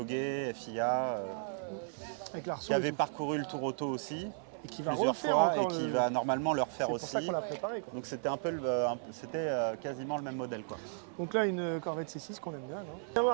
FIA, Avec l'Arceau qui avait parcouru le Tour Auto aussi, et qui va plusieurs refaire fois, et encore qui le- va normalement le refaire C'est pour aussi. ça qu'on l'a préparé, quoi. Donc c'était c'était quasiment le même modèle quoi. Donc là, une Corvette C6 qu'on aime bien, non? On va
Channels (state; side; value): silent; left; 54 dB below the other